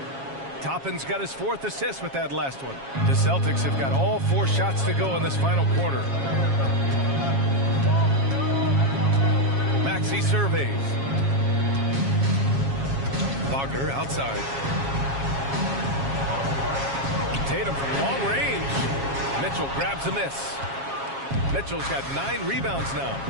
Toppin's got his 4th assist with that last one. The Celtics have got all 4 shots to go in this final quarter. Maxey surveys. Wagner outside. Tatum from long range. Mitchell grabs a miss. Mitchell's got 9 rebounds now.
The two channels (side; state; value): left; late; 7.3 ms